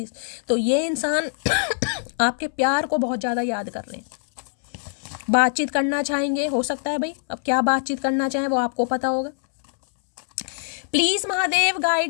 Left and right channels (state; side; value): silent; right; 63 dB below the other